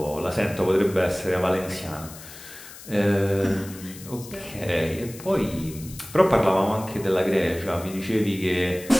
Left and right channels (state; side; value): noise; left; hiss, 16 dB below the sound